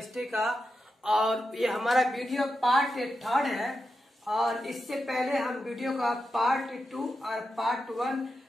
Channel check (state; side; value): normal; both; correlation 0.88